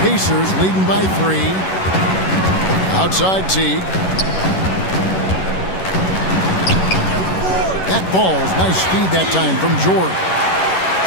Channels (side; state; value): right; late; 11 ms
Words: leading by 3. Outside Teague. That falls. Nice speed that time from George.